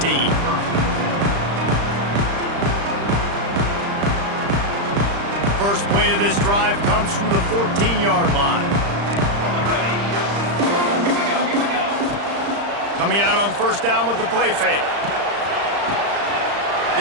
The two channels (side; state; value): left; late; 35 ms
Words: First play of this drive comes from the 14-yard line. Coming out on first down with the play fake.